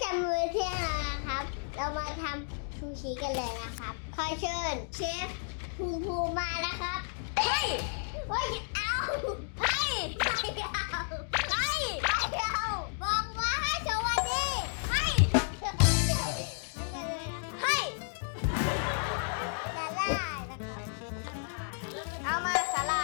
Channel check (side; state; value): right; silent; digital silence